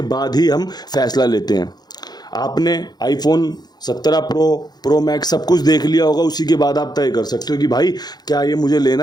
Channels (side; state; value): right; late; 0.20 ms